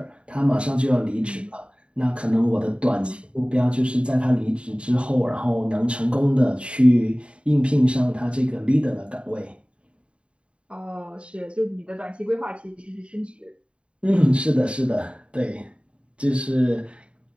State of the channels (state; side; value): late; left; 0.058 ms